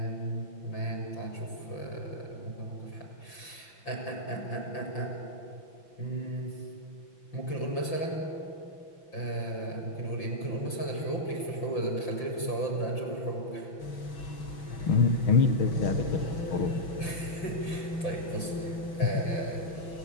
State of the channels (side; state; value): right; late; 5.8 ms